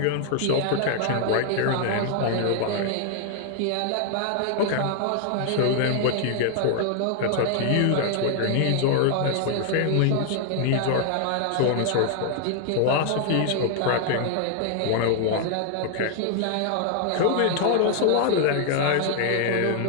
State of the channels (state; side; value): different; both; correlation 0.00